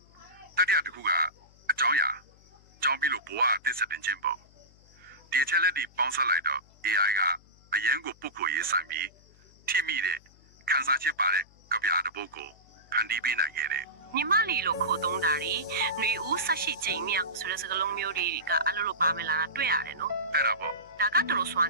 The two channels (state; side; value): noise; left; hum, 28 dB below the sound